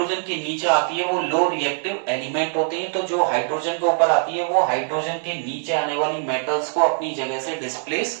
के नीचे आती है वो लो रिएक्टिव एलिमेंट होते हैं। तो जो हाइड्रोजन के ऊपर आती है वो हाइड्रोजन के नीचे आने वाली मेटल्स को अपनी जगह से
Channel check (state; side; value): silent; left; 64 dB below the other